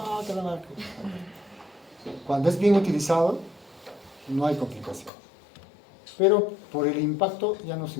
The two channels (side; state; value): right; drops out; at 5.1 s